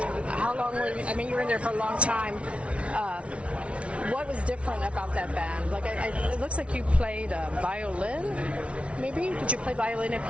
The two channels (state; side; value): late; left; 0.061 ms